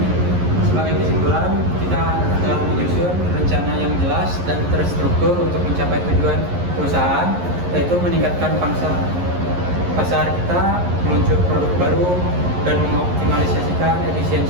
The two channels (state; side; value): late; left; 11 ms